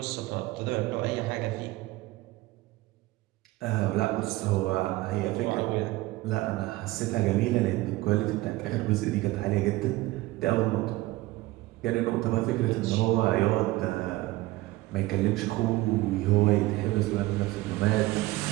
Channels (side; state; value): left; quieter; 18.8 dB